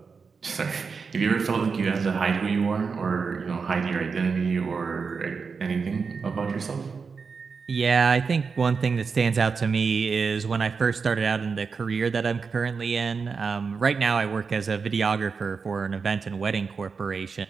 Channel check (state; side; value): quieter; left; 5.2 dB